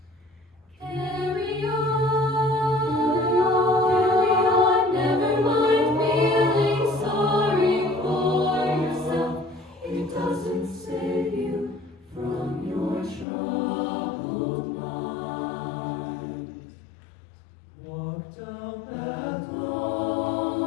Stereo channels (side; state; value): right; drops out; at 13.2 s